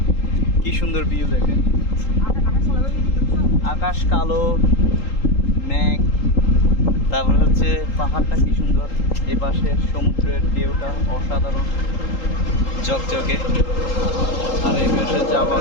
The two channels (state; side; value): late; right; 3.8 ms